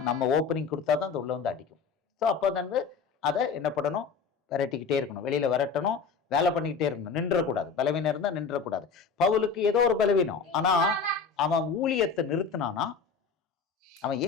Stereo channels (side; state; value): right; quieter; 5.4 dB